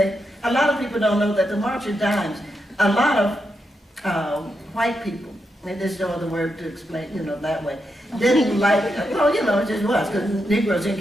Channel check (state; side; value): normal; both; correlation 0.84